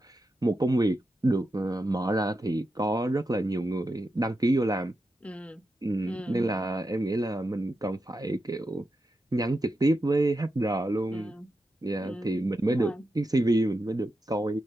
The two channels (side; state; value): both; normal; correlation 0.87